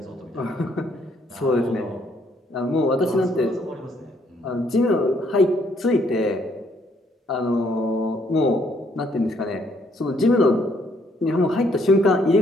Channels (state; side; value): normal; both; correlation 0.68